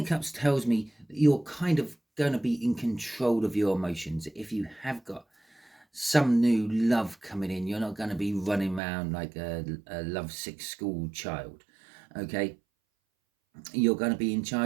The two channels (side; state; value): left; drops out; at 8.8 s